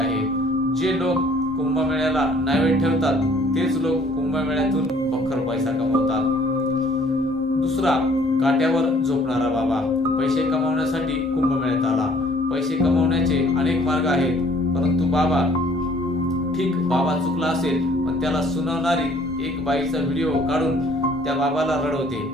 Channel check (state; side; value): normal; both; correlation 0.58